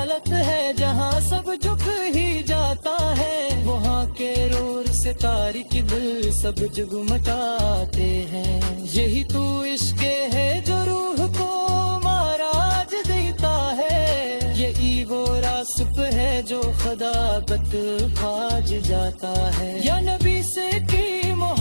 ہے جہاں سب جھک ہی جاتا ہے وہاں کے رور سے تاریک دل سب جگمگاتے ہیں یہی تو عشق ہے جو روح کو معراج دیتا ہے یہی وہ راسپ ہے جو خدابت کھاج جاتا ہے یا نبی سے کی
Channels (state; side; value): inverted; both; correlation -1.00